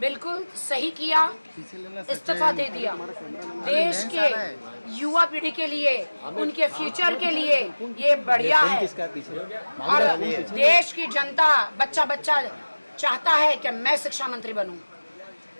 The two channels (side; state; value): both; inverted; correlation -1.00